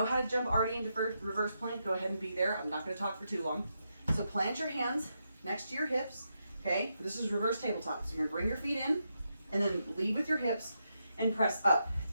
how to jump already into reverse plank, go ahead and be there. I'm not going to talk for too long. So plant your hands next to your hips. Okay, this is reverse tabletop. So you're gonna bring your feet in and then lead with your hips and press up.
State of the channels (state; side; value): inverted; both; correlation -0.83